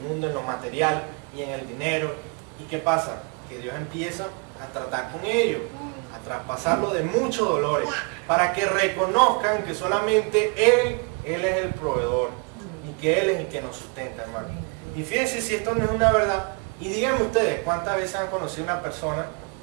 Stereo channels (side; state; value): left; quieter; 35.2 dB